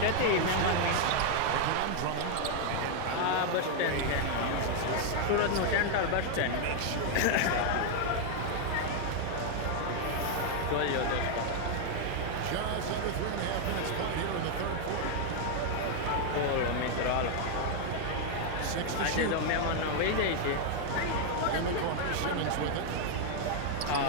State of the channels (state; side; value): different; both; correlation 0.00